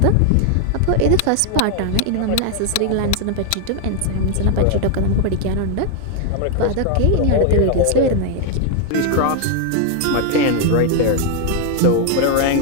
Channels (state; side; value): different; both; correlation 0.00